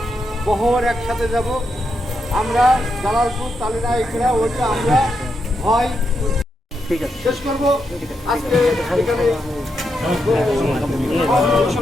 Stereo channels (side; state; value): both; normal; correlation 0.83